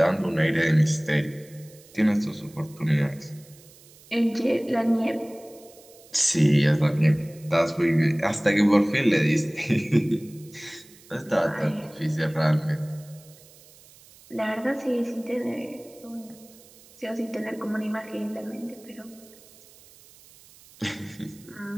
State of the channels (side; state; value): right; noise; hiss, 24 dB below the sound